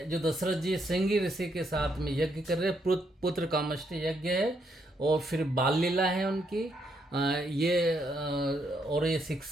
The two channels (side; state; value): both; normal; correlation 0.75